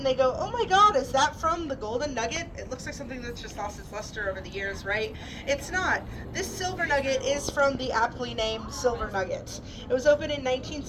they go, oh my god, is that from the golden nugget? It looks like something that's just lost its luster over the years, right? It's not. This silver nugget is from the aptly named Silver Nugget. It was opened in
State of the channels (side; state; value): both; identical; correlation 1.00